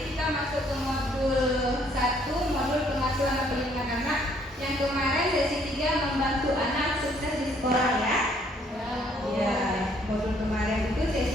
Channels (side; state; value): both; normal; correlation 0.65